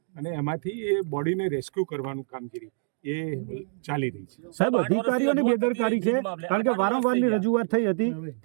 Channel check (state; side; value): silent; left; digital silence